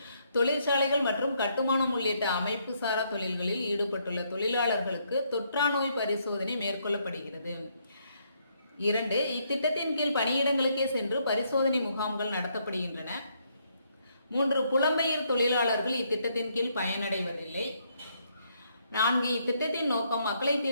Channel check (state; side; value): inverted; both; correlation -0.73